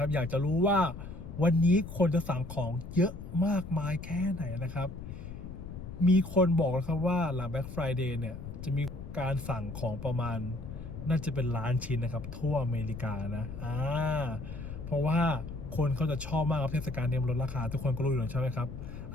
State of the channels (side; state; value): left; noise; rumble, 11 dB below the sound